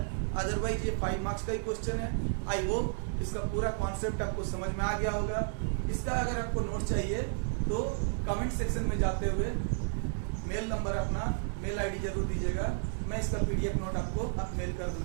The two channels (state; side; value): silent; left; 56 dB below the other